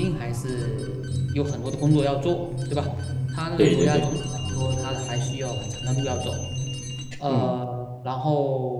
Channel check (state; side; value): identical; both; correlation 1.00